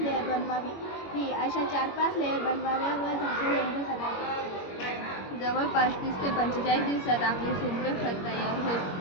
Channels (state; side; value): late; right; 21 ms